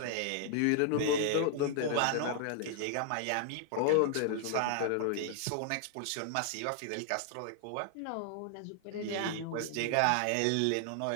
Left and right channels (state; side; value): different; both; correlation 0.00